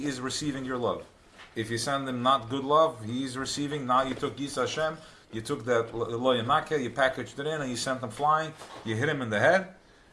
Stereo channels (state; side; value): identical; both; correlation 1.00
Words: is receiving your love. If you send him not good love, he is receiving. Now you took Yis Hashem, you took that lo yanake, you packaged it in, and you sent him flying. You hit him in the head,